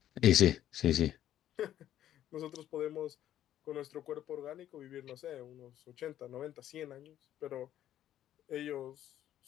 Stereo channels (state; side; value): quieter; right; 11.8 dB